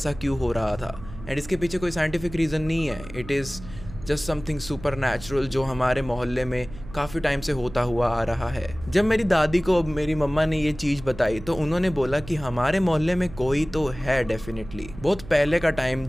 क्यों हो रहा था। एंड इसके पीछे कोई साइंटिफिक रीज़न नहीं है, it is just something super natural जो हमारे मोहल्ले में काफ़ी टाइम से होता हुआ आ रहा है। जब मेरी दादी को मेरी मम्मा ने ये चीज़ बताई तो उन्होंने बोला कि हमारे मोहल्ले में कोई तो है डेफिनेटली। बहुत पहले का टाइम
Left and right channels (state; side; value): noise; right; hum, 15 dB below the sound